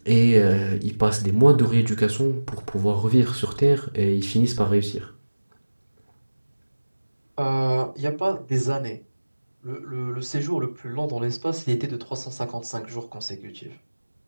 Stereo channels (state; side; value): inverted; both; correlation -1.00